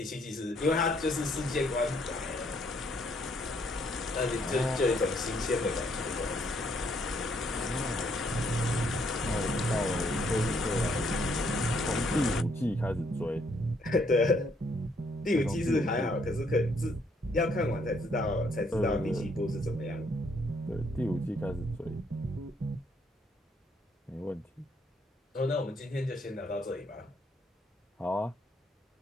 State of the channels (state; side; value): normal; both; correlation 0.70